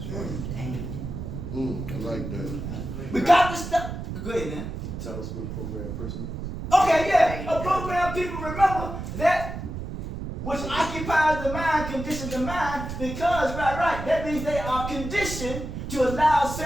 I like that. We got to stop. Go ahead, man. You tell us what a programmed person. Okay, yeah. A programmed people, remember that which occupies the mind, conditions the mind, because, right, that means they are conditioned to allow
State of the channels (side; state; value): right; noise; rumble, 7 dB below the sound